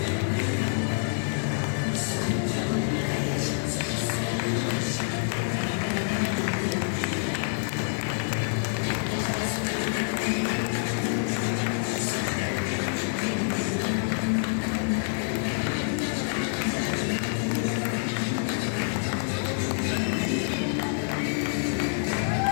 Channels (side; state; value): right; silent; digital silence